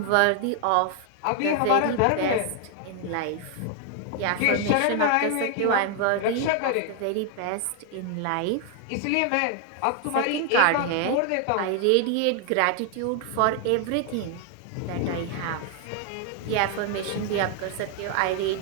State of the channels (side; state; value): both; different; correlation 0.00